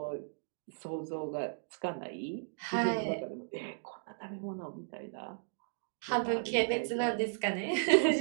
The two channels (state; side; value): silent; left; digital silence